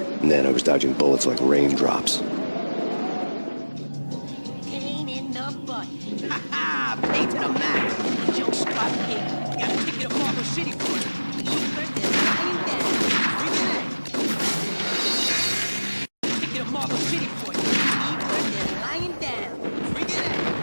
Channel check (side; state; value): both; inverted; correlation -1.00